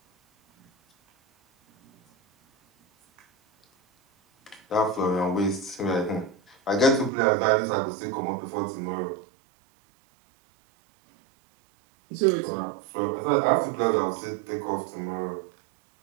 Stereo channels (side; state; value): left; drops out; at 7.1 s